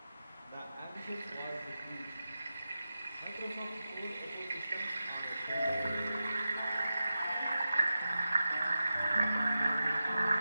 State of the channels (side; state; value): both; inverted; correlation -0.92